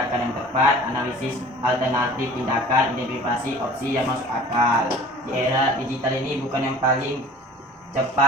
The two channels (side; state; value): both; normal; correlation 0.46